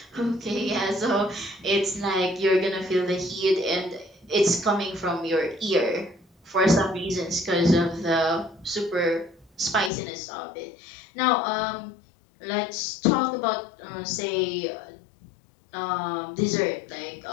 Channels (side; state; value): right; drops out; at 9.9 s